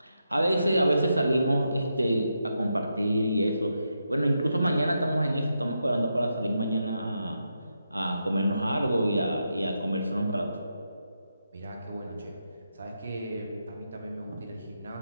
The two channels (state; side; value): inverted; both; correlation -0.85